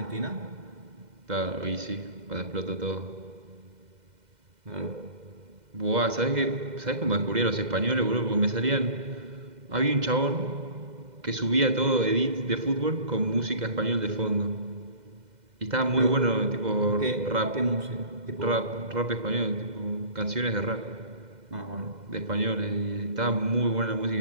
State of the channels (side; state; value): left; late; 2.0 ms